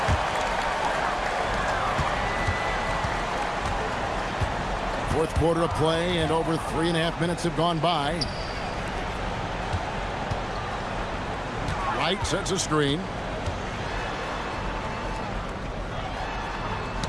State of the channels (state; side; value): identical; both; correlation 1.00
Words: Fourth quarter of play, and over 3.5 minutes have gone by. Wright sets a screen.